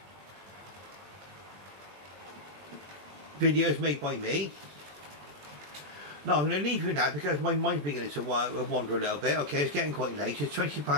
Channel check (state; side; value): late; left; 21 ms